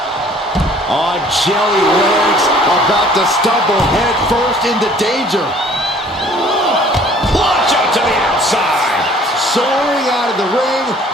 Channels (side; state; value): both; normal; correlation 0.54